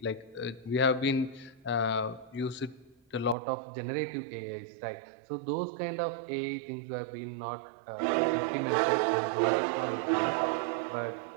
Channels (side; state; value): left; drops out; at 3.4 s